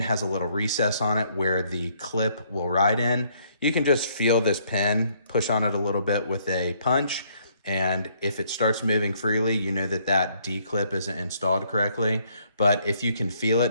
a little recess on it where the clip will ride in. You can just feel this pin, push on it a little bit with a punch, And if it starts moving freely, you know that that D-clip isn't installed correctly. But if you can feel it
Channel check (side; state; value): both; inverted; correlation -0.67